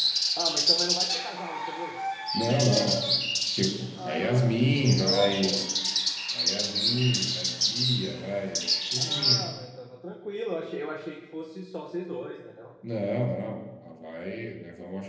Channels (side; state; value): both; identical; correlation 1.00